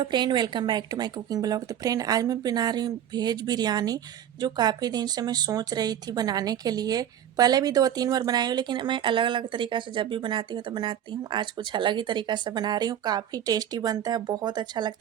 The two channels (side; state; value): left; quieter; 10.3 dB